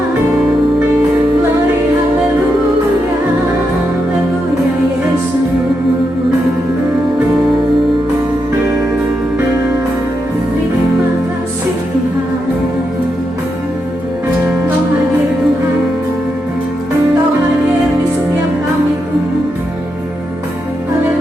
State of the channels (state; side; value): normal; both; correlation 0.84